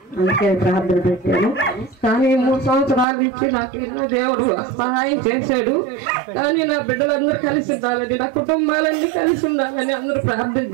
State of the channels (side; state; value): left; drops out; at 3.1 s